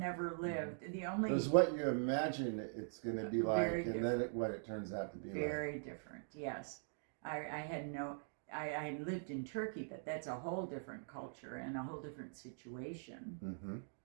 lived. The only It was what you imagine it's going to be like, Very and then what it turns out to be like. very different. Yes, I had no. I lived in Turkey, but that's a whole different culture and a whole different situation. Mm-hmm.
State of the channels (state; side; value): silent; left; digital silence